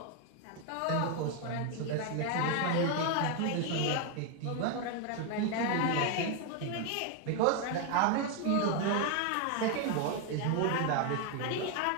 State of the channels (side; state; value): both; different; correlation 0.01